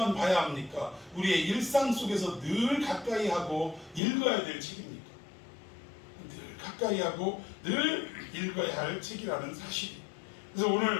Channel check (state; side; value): drops out; right; at 4.0 s